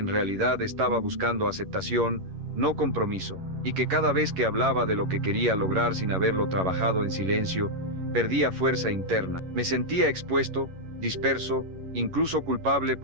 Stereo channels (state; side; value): late; left; 11 ms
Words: realidad estaba buscando aceptación, no compromiso, y que cada vez que hablaba de lo que quería lograr sin haberlo trabajado en silencio, perdía fuerza interna. Me sentía expuesto, disperso, incluso culpable